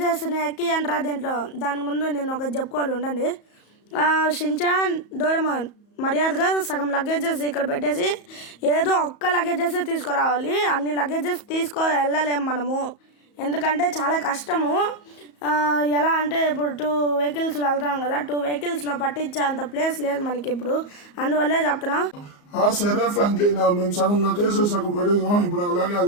ఎక్కి అంటారా దీంట్లో. దాని ముందు నేను ఒక చెప్పుకోవాలి, ఉండండి. షించాన్, డోరేమాన్ మర్యాదగా సగం లగేజెస్ ఇక్కడ పెట్టేసి ఏదో ఒక్క లగేజెస్ తీసుకురావాలి. అన్ని లగేజెస్ వెళ్ళలేము మనము, ఎందుకంటే చాలా కష్టము. ఎలా అంటే ఇప్పుడు 2 వెహికల్స్లో వెళ్తాం కదా, 2 వెహికల్స్లో పట్టించే అంత ప్లేస్ లేదు మనకి ఇప్పుడు, అందువల్లే చెప్తున్నా. సరే ఫ్రాంక్లిన్, మేము సగం లగేజ్ సగం పెట్టేసాం, ఇప్పుడు అలాగే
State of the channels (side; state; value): right; late; 34 ms